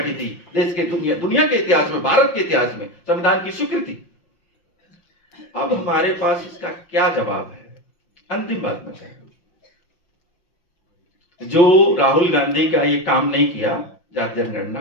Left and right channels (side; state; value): right; late; 5.7 ms